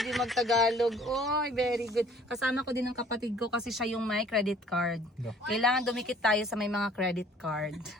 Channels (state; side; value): normal; both; correlation 0.55